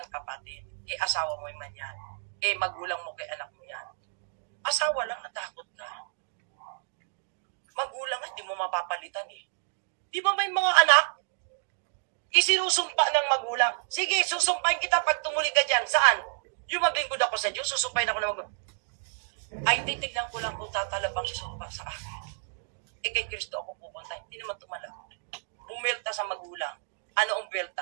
kapatid. Asawa mo man yan. Magulang mo kay anak mo yan. Asawa lang, natakot ka. Magulang, hindi mo mapapalitan eh. Di ba may mga anak? Isinusumpa ng magulang. Sige, susumpahin kita pag tumuli ka dyan. Saan? Yung maglingkod ako sa Diyos, susumpahin ako ng magulang. Ay, titignan ko lang kung tatalabang si sumpa sa akin. Kay Kristo ako pupunta. Hindi naman tumalab. Bumelta sa magulang. Ano ang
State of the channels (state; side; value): silent; left; digital silence